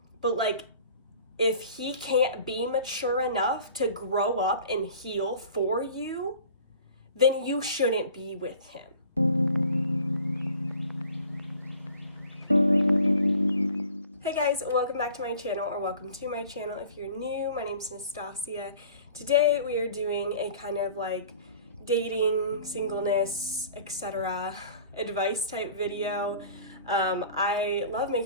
but like, if he can't be mature enough to grow up and heal for you, then you shouldn't be with him. Hey guys, welcome back to my channel, or welcome to my channel if you're new. My name's Nastasia. Today we are doing a kind of like dating, singleness, etc. advice type video. I love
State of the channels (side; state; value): both; inverted; correlation -0.47